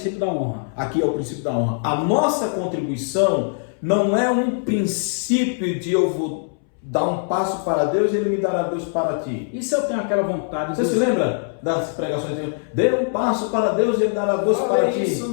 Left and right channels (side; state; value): right; silent; 64 dB below the other